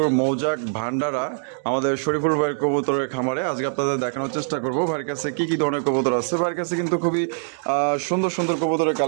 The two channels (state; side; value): silent; left; digital silence